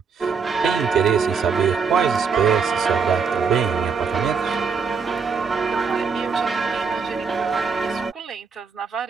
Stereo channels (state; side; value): quieter; left; 5.6 dB